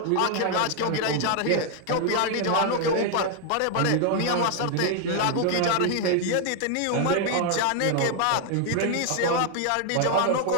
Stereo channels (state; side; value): different; both; correlation 0.00